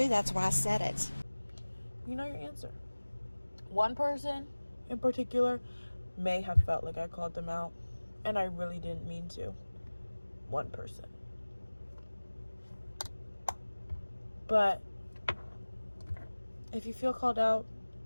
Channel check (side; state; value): both; inverted; correlation -1.00